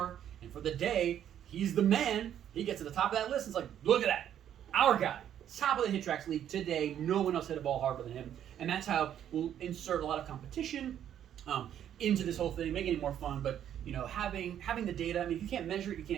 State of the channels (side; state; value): left; quieter; 10.2 dB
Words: and for the day, he's the man, he gets to the top of that list, and it's like, look at that, our guy, top of the HitTrax league today, no one else hit a ball harder than him. And that's how we'll insert a lot of competition into this whole thing, making it more fun, but you know, having the data, I mean, if you can't measure it, you